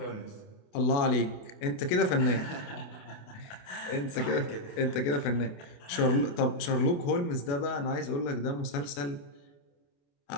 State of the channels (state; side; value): late; right; 28 ms